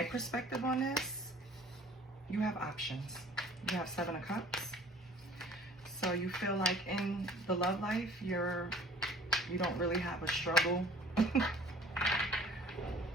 perspective on this? You have options. You have 7 of Cups. So you feel like in the love life, you don't really have a struggle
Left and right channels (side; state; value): both; normal; correlation 0.50